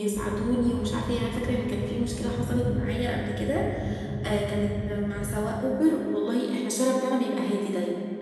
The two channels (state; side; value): identical; both; correlation 1.00